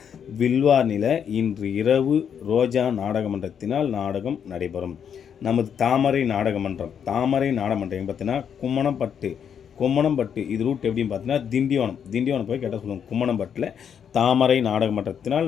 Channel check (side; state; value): right; quieter; 8.0 dB